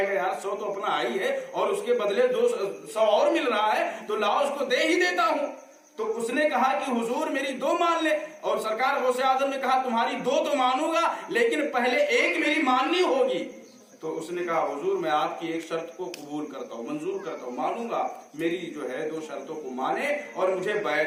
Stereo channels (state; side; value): identical; both; correlation 1.00